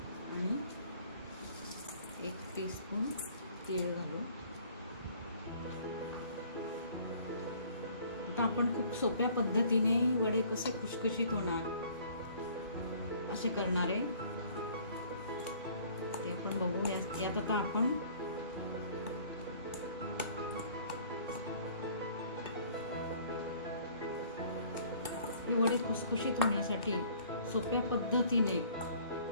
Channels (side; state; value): both; inverted; correlation -0.55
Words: आणि 1 टीस्पून तीळ घालू। आता आपण खूप सोप्या पद्धतीने वडे कसे खुशखुशीत होणार असे करणार आहे ते आपण बघू। यात आता आपण हे वडे खुसखुशीत होण्यासाठी सोप्या पद्धतीने